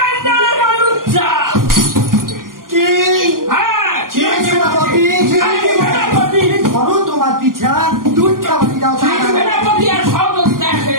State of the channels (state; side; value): late; left; 0.91 ms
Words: লুচ্চা। কি? হ্যাঁ, সেনাপতি ধরো তোমার পিছা দুধ খাবারি দাও। সেনাপতি আর সহযোগিতা এসে